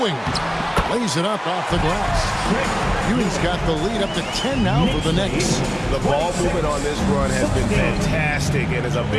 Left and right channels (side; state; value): both; identical; correlation 1.00